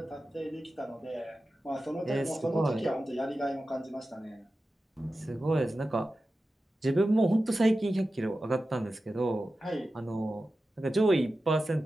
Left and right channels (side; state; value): both; normal; correlation 0.93